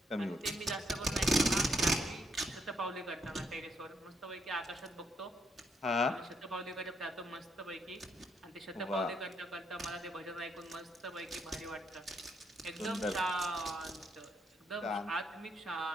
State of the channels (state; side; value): normal; both; correlation 0.75